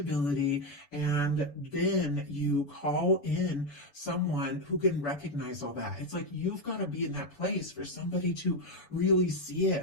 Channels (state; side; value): late; right; 7.0 ms